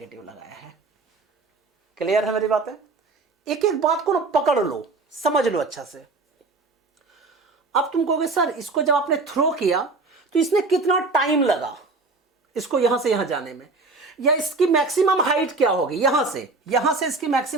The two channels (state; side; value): quieter; left; 3.7 dB